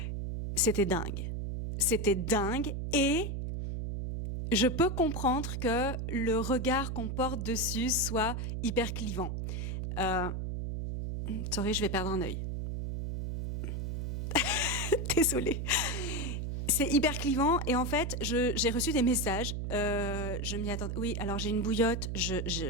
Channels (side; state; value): right; noise; hum, 3 dB below the sound